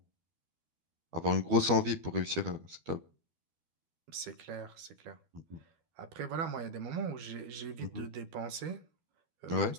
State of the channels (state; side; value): late; left; 12 ms